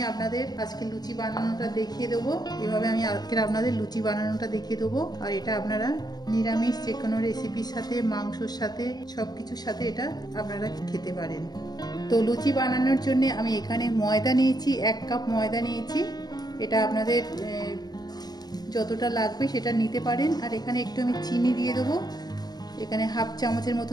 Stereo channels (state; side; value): late; right; 0.19 ms